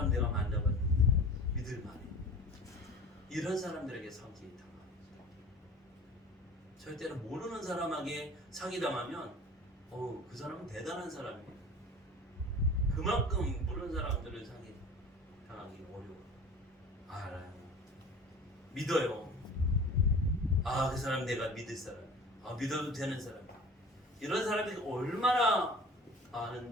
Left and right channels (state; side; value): normal; both; correlation 0.40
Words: 내가 만나봤는데 믿을만해. 이런 사람들에게 사기 당합니다. 절대로 모르는 사람에게 사기당하면 그 사람은 대단한 사람이에요. 그만큼 모르는 사람들을 사기 당하기 어려워요. 알아요. 믿어요. 그 사람 내가 믿을 사람. 믿어도 되는 사람. 이런 사람이 얼마나